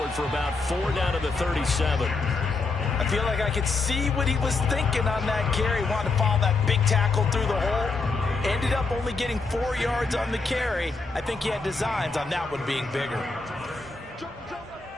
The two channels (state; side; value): quieter; right; 3.9 dB